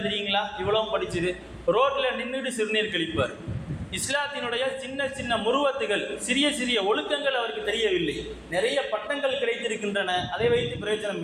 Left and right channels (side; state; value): both; identical; correlation 1.00